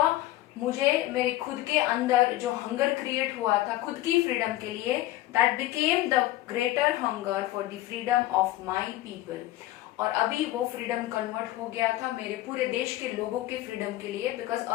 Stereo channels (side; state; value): right; quieter; 15.8 dB